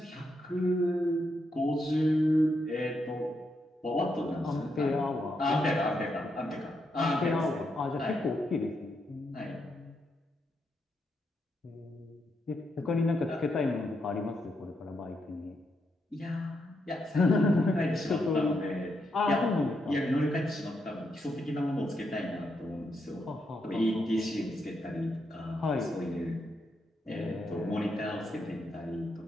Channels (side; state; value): both; normal; correlation 0.81